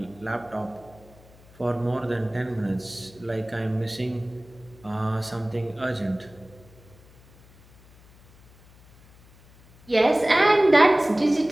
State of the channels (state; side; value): noise; left; hum, 26 dB below the sound